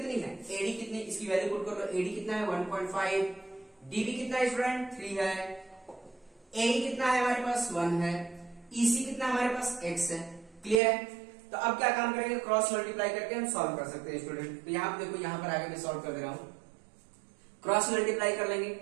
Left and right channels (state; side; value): drops out; left; at 10.8 s